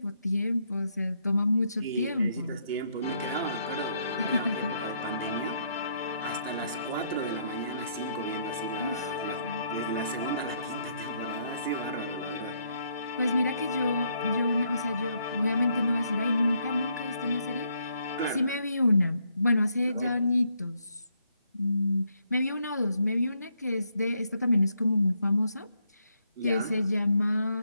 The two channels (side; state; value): both; inverted; correlation -0.74